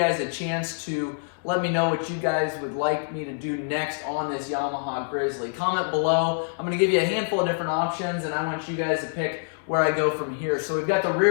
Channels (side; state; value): right; silent; 61 dB below the other